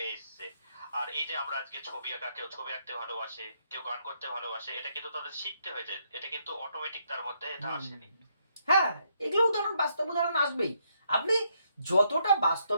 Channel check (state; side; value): inverted; both; correlation -0.75